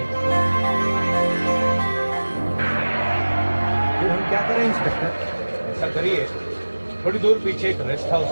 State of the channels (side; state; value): both; inverted; correlation -1.00